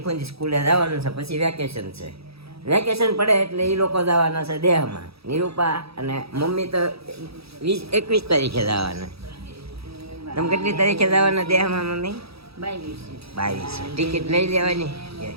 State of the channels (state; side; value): late; left; 0.77 ms